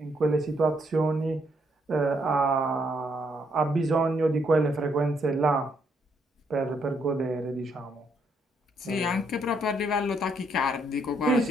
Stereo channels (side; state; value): both; normal; correlation 0.73